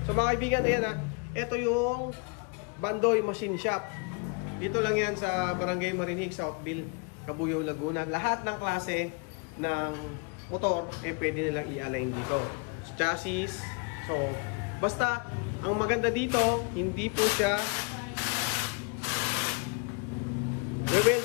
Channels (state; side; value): quieter; right; 34.4 dB